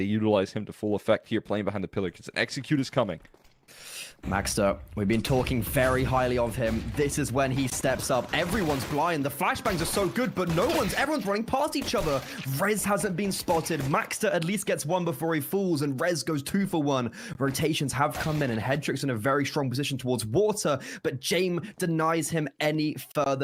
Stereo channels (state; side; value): identical; both; correlation 1.00